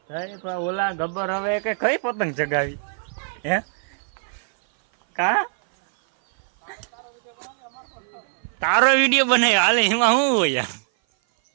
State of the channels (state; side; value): silent; left; 57 dB below the other